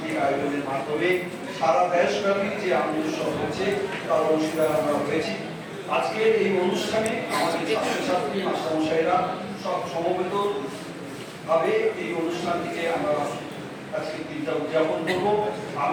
আয়োজনের মাধ্যমে সারা দেশব্যাপী যে আনন্দ উৎসব হয়েছে তার অংশীদার আমরা হয়েছি। আজকের এই অনুষ্ঠানে আমাদের ছাত্রছাত্রী, মাস্টারমশাইরা সব সমবেত ভাবে এই অনুষ্ঠানটিকে আমরা আজকে দিনটা উদযাপন করবো।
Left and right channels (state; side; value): identical; both; correlation 1.00